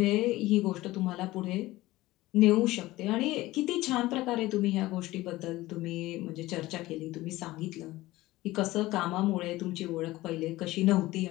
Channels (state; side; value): quieter; right; 18.0 dB